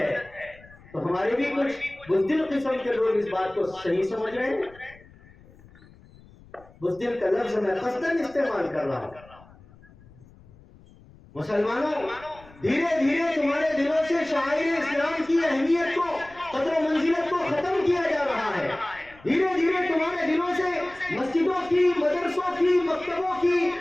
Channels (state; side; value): noise; left; rumble, 24 dB below the sound